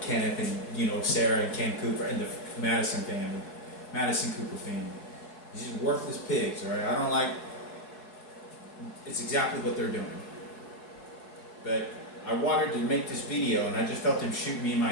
Kenneth and, Sarah and Ken Cooper and the Madison family, Madison Cooper family. These are worthless pigs, all right? I don't like... It's exactly what they're doing. But I wanted to make this video, and I just felt him shoot me in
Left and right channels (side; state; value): right; late; 4.7 ms